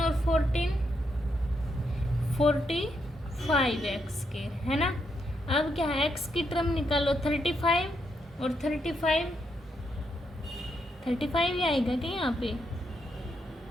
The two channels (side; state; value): both; normal; correlation 0.79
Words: और 14 45x स्क्वायर है ना। अब क्या है x की टर्म निकालो 35 और 35 ही आएगा क्या यहाँ पे